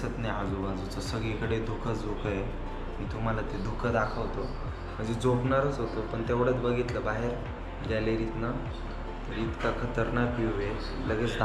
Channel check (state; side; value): identical; both; correlation 1.00